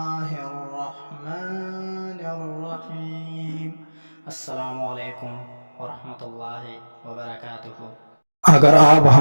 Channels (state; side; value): inverted; both; correlation -1.00